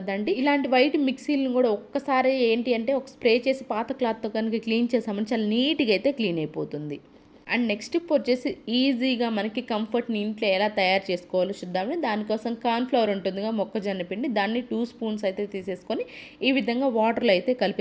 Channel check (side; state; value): both; identical; correlation 1.00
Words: ఇలాంటి వైట్ మిక్సీలను కూడా ఒక్కసారి ఏంటి అంటే ఒక స్ప్రే చేసి పాత క్లాత్తో కనుక క్లీన్ చేసామని చాలా నీట్గా అయితే క్లీన్ అయిపోతుంది. అండ్ నెక్స్ట్ టిప్ వచ్చేసి ఈజీగా మనకి కంఫర్ట్ని ఇంట్లో ఎలా తయారు చేసుకోవాలో చూద్దామని, దానికోసం కార్న్ఫ్లవర్ ఉంటుందిగా, మొక్కజొన్న పిండి, దాన్ని 2 స్పూన్స్ అయితే తీసేసుకొని ఈ విధంగా వాటర్లో అయితే